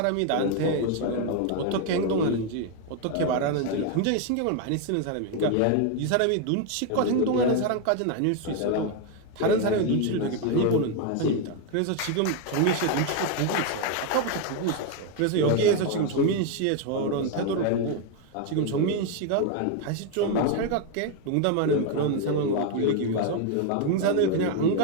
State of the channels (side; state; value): both; different; correlation 0.01